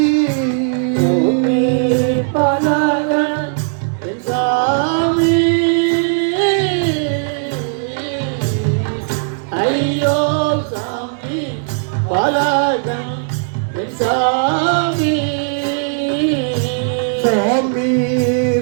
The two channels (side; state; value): left; silent; digital silence